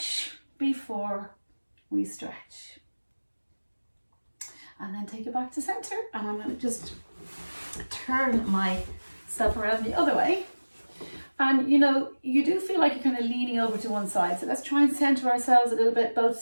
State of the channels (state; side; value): inverted; both; correlation -1.00